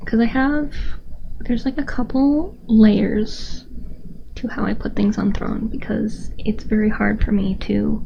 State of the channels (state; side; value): identical; both; correlation 1.00